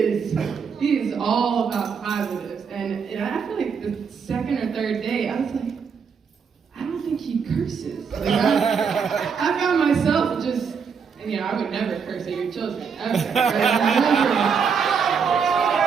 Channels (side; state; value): left; quieter; 6.2 dB